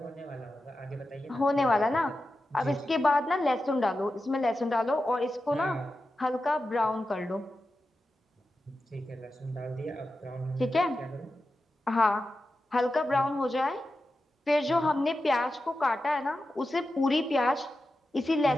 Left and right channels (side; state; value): both; normal; correlation 0.91